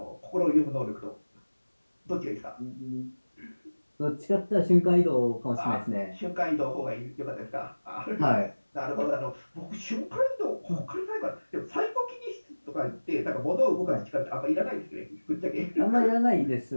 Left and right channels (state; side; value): inverted; both; correlation -1.00